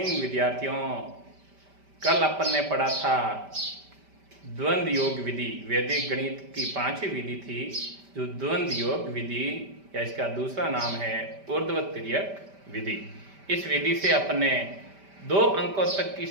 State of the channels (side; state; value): left; late; 5.1 ms